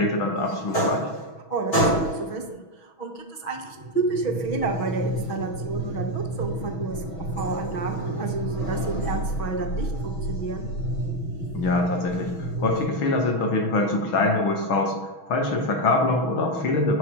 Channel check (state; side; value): late; right; 6.2 ms